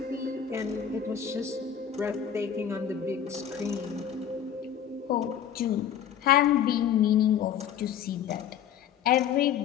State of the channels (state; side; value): quieter; right; 8.9 dB